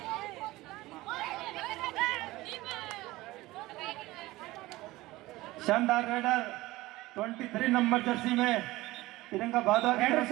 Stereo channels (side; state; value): left; quieter; 18.8 dB